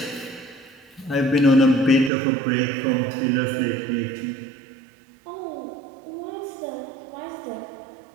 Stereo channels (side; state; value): left; drops out; at 2.1 s